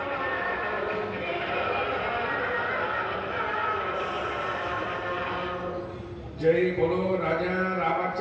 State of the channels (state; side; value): identical; both; correlation 1.00